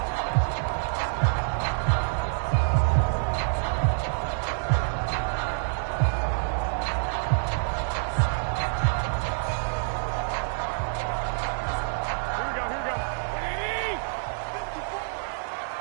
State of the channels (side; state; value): left; silent; digital silence